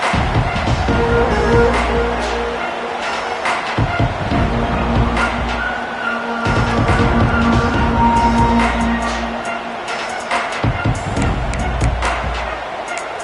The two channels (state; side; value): identical; both; correlation 1.00